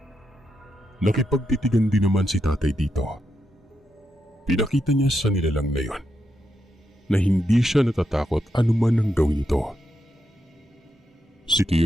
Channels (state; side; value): normal; both; correlation 0.84